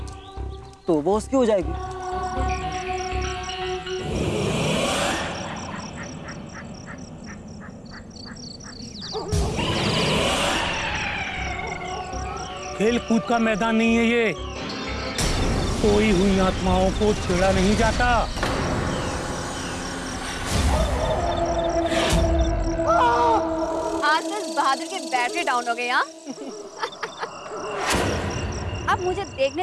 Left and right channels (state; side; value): identical; both; correlation 1.00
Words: तो वो उसकी हो जाएगी। खेल कूद का मैदान नहीं है ये। सोई हुई आत्माओं को छेड़ा नहीं जाता। आज तो इस बहादुर की बैटरी डाउन हो गई। हाँ अब मुझे